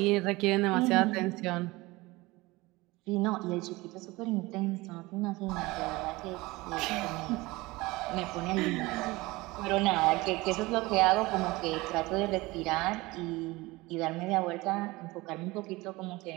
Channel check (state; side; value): quieter; left; 21.5 dB